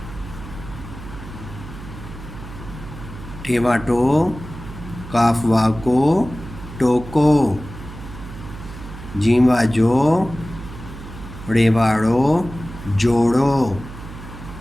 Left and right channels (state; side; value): noise; right; hum, 13 dB below the sound